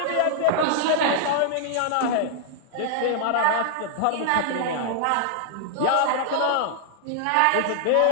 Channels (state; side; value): different; both; correlation -0.01